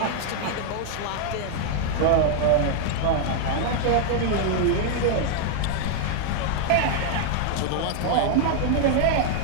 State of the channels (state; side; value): different; both; correlation 0.00